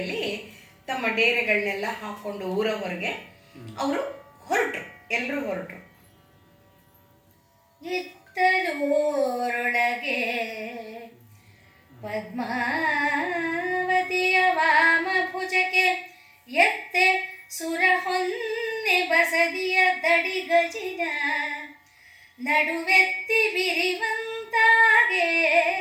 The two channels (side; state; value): both; identical; correlation 1.00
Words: ತಮ್ಮ ಡೇರೆಗಳನ್ನೆಲ್ಲ ಹಾಕ್ಕೊಂಡು ಊರ ಹೊರಗೆ ಅವರು ಎಲ್ಲರೂ ಹೊರಟರು. ಇತ್ತಲೂರೊಳಗೆ ಪದ್ಮಾವತಿಯ ವಾಮ ಭುಜಕ್ಕೆ ಎತ್ತೆ ಸುರ ಹೊನ್ನೆ ಬಸದಿಯ ದಡಿ ಗಜಿನ ನಡುವೆತ್ತಿ ಬಿರಿವಂತ ತಾಗೆ